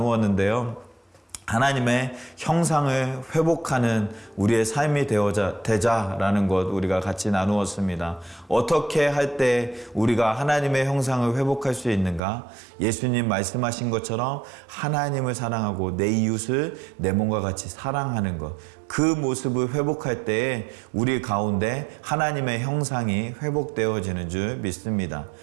하나님의 형상을 회복하는 우리의 삶이 되자라는 것 우리가 같이 나누었습니다. 어떻게 할 때 우리가 하나님의 형상을 회복할 수 있는가? 예수님 말씀하신 것처럼 하나님을 사랑하고 내 이웃을 내 몸과 같이 사랑하는 것. 그 모습을 회복할 때에 우리 가운데 하나님의 형상이 회복되어지는 줄 믿습니다.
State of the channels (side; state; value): left; drops out; at 12.2 s